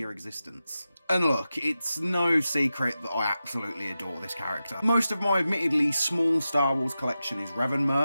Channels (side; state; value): both; inverted; correlation -0.92